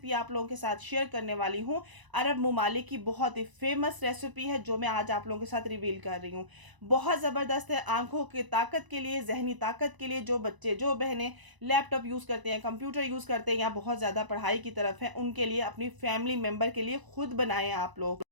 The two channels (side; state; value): left; late; 1.0 ms